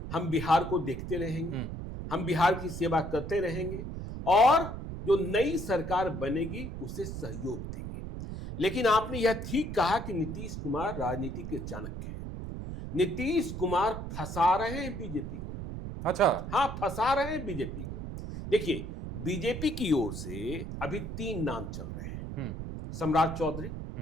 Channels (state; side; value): noise; right; rumble, 7 dB below the sound